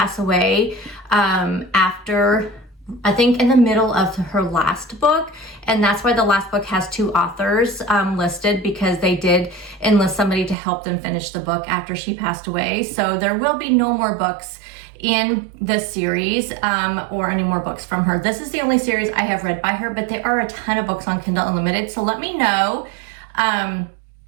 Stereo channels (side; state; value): left; drops out; at 10.6 s